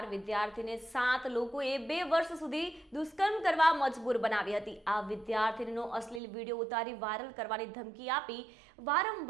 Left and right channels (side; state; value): left; drops out; at 6.2 s